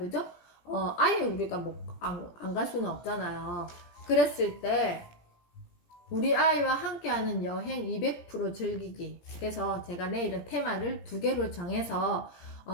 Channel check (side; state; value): right; late; 17 ms